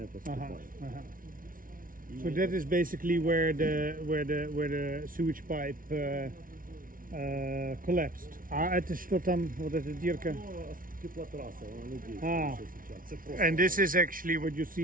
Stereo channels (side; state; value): left; late; 0.40 ms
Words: поступает. So that is basically where the sewage pipe collapsed. Это что там, вот эта дырка? And this is actually what you